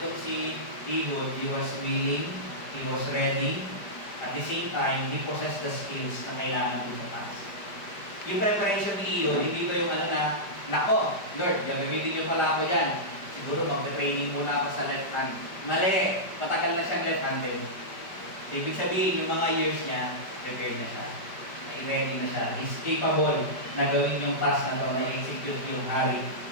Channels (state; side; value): late; right; 5.1 ms